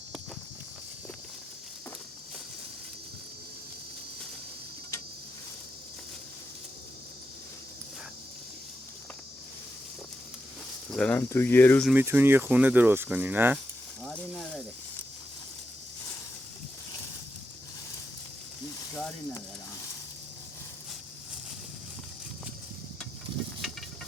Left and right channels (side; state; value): both; normal; correlation 0.86